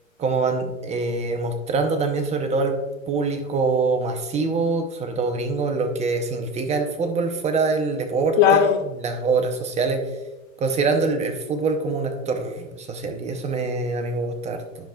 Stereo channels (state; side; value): normal; both; correlation 0.30